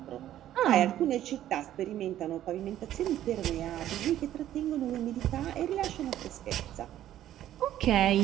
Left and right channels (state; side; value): quieter; left; 12.3 dB